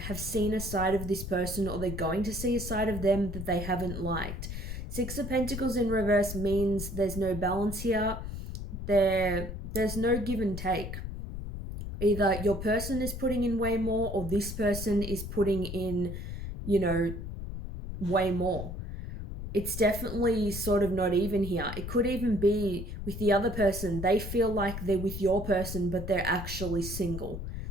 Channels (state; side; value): noise; left; rumble, 7 dB below the sound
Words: have seen a side of this person, or they're going to see a side of them that they haven't liked. Six of Pentacles in reverse means there's no balance here. There's no give and take. Either your person is putting in way more, or this person is putting in, you know, way more. It's definitely sort of not even here. It could even be with the other person. They feel like they're with your person, but they're actually single.